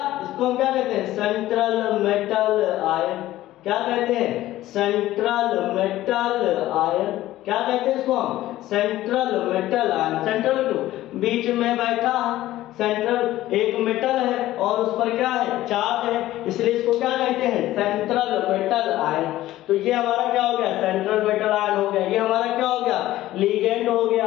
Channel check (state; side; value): quieter; right; 15.1 dB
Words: इसको हम क्या कहते हैं? Central metal ion. क्या कहते हैं? Central metal ion. क्या कहते हैं इसको हम? Central metal ion. सेंट्रल क्यों? बीच में बैठा है। सेंट्रल एक मेटल है और उस पर क्या है? चार्ज है, इसलिए इसको क्या कहते हैं? Central metal ion. तो ये हमारा क्या हो गया? सेंट्रल मेटल आयन हो गया। ये हमारा क्या हो गया? लिगेंड हो